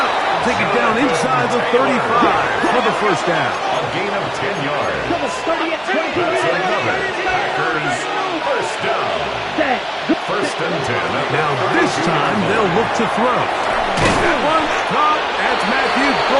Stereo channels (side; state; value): both; identical; correlation 1.00